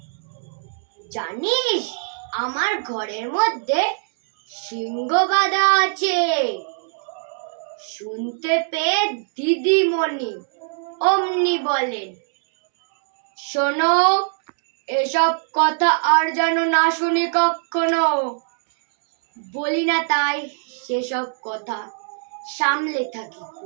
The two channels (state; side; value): silent; left; 64 dB below the other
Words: জানিস আমার ঘরের মধ্যে সিংহ বাঁধা আছে। শুনতে পেয়ে দিদিমণি অমনি বলেন, শোনো, এসব কথা আর যেন না শুনি কখনো। বলি না তাই সেসব কথা, সামলে থাকি